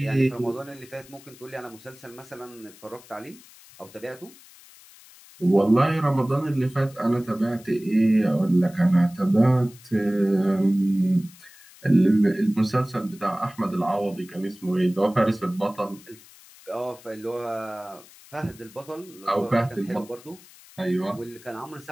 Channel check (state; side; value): noise; left; hiss, 23 dB below the sound